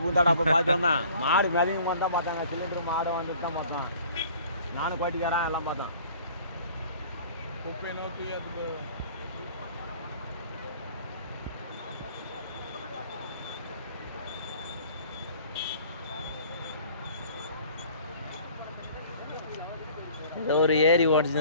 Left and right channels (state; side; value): inverted; both; correlation -0.51